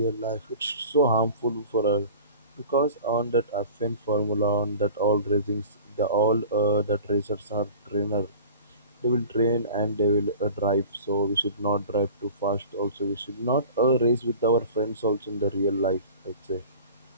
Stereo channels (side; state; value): both; inverted; correlation -0.42